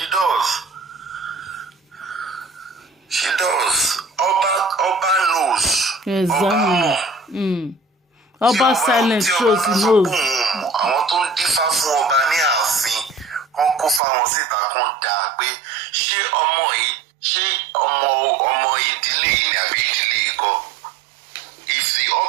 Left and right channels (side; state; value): left; drops out; at 14.0 s